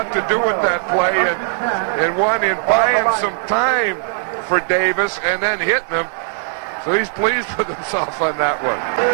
to do with that play, and one in buying some time for Davis and then hitting him. So he's pleased with himself on that one.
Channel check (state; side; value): silent; left; digital silence